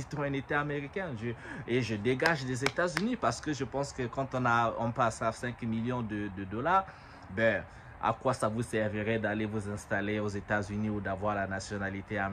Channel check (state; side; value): identical; both; correlation 1.00